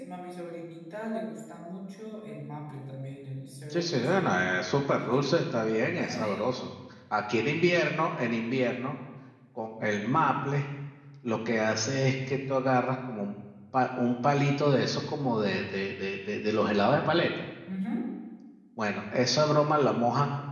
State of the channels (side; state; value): both; identical; correlation 1.00